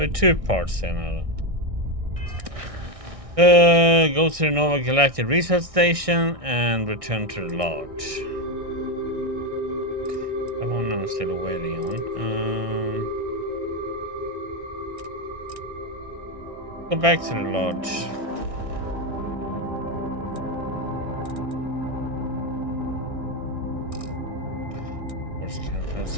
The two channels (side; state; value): left; late; 1.6 ms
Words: are two parts here now. Go to the Nova Galactic Research Station and return to the lodge. That one I'm still waiting on. Go back to the lodge. Of course, I can't fast